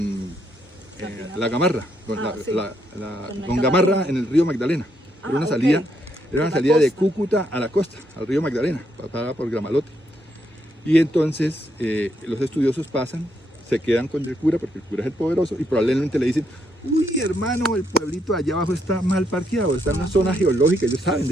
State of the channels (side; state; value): both; normal; correlation 0.76